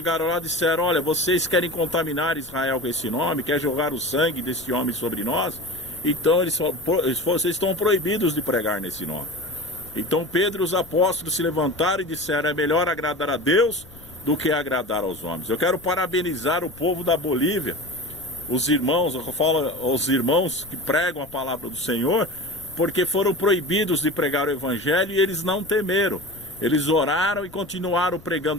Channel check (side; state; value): left; noise; rumble, 22 dB below the sound